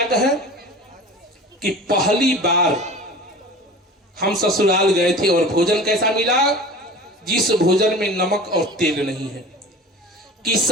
कहे कि पहली बार हम ससुराल गए थे और भोजन कैसा मिला, जिस भोजन में नमक और तेल नहीं है। कि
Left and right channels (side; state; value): both; normal; correlation 0.38